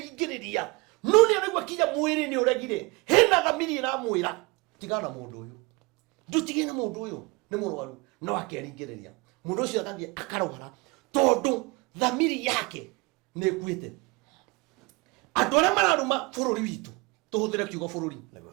no ni arigwa kinya mwiri ni uregire hena thamiri iramwira tigana mundu uyu ndutigena mundu uyu ni murwaru no akeringiriria mundu ucio athambie akarwara tondu thamiri yake ni kwite andu aria mararuma bururi witu tuhuthire kiugo bururi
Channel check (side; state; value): left; quieter; 26.4 dB